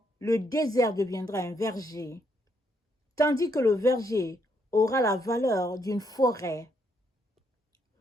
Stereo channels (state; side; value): normal; both; correlation 0.74